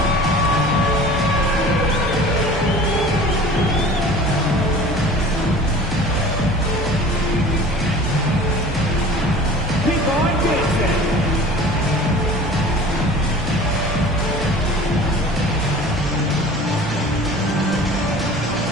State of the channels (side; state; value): both; normal; correlation 0.43